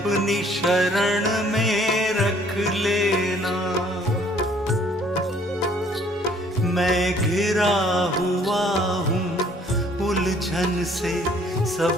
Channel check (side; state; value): both; normal; correlation 0.60